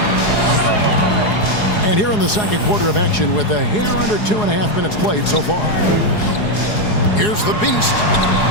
And here in the second quarter of action with a hair under 2.5 minutes played so far. Here's the Beast.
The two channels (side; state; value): right; late; 4.8 ms